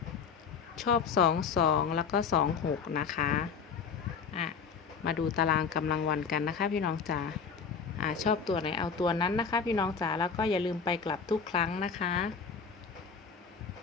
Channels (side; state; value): right; quieter; 6.0 dB